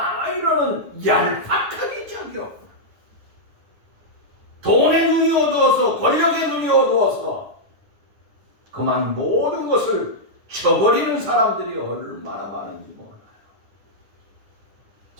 이러는 얄팍하게 자기요. 돈의 눈이 어두워서 권력의 눈이 어두워서 그만 모든 것을 쳐버리는 사람들이 얼마나 많은지 몰라요.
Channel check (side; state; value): left; late; 9.7 ms